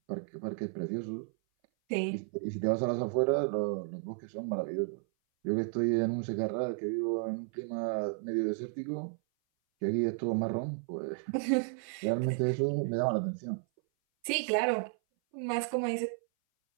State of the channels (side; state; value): left; silent; 56 dB below the other